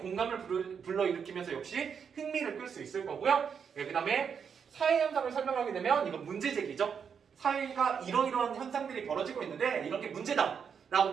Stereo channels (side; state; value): left; quieter; 6.9 dB